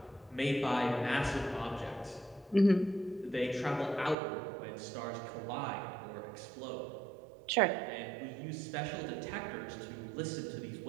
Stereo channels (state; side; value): drops out; left; at 4.2 s